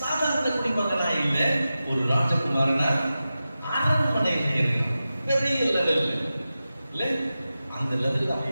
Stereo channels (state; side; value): inverted; both; correlation -0.93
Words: சாதாரண குடிமகனா இல்ல, ஒரு ராஜகுமாரனா அரண்மனையில இருக்கான். பெரிய லெவல் இல்ல, அந்த லெவல்